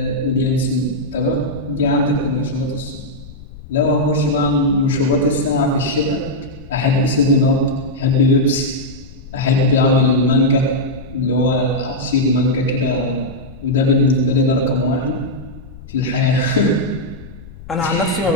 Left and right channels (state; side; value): noise; left; rumble, 18 dB below the sound